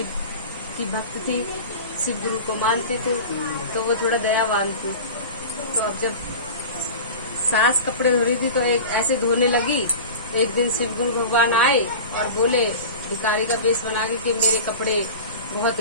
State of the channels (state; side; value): inverted; both; correlation -0.33